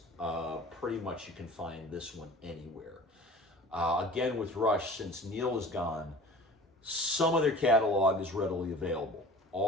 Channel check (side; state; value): both; normal; correlation 0.42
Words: pretty much you can find this one anywhere. Again, with Rush, since Neil is gone, some of their catalog is readily available.